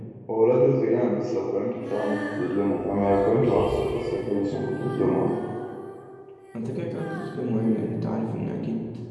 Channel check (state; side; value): identical; both; correlation 1.00